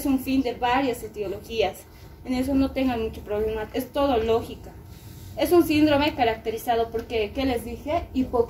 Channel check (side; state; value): both; identical; correlation 1.00